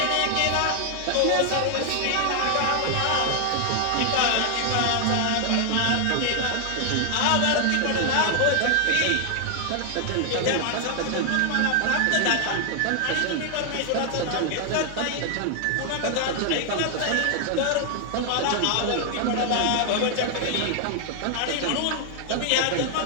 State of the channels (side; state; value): both; different; correlation 0.00